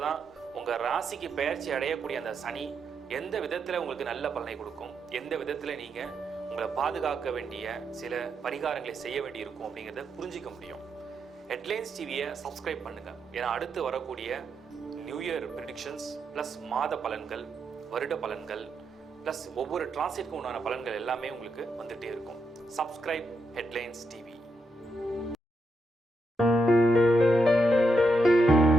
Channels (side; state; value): both; normal; correlation 0.82